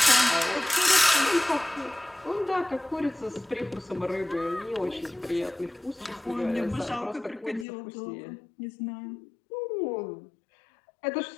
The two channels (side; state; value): right; drops out; at 7.7 s